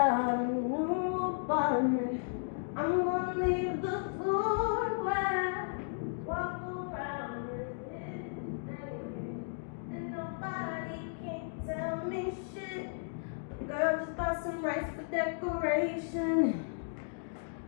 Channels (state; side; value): silent; right; digital silence